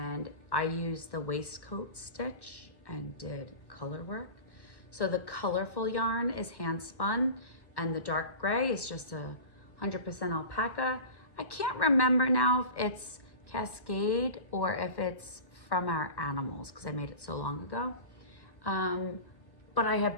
I used the waistcoat stitch and did color work. So the colorful yarn is hand spun, and the dark gray is just a 100% alpaca. I can't remember now if it's Cascade or if it's from our animals, because I made it so long ago. But I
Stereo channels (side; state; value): right; late; 1.1 ms